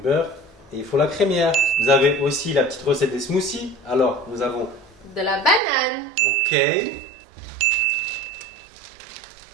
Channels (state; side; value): drops out; left; at 5.6 s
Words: et il faut la crémière. Vous avez aussi la petite recette des smoothies. Alors nous avons de la banane, ok,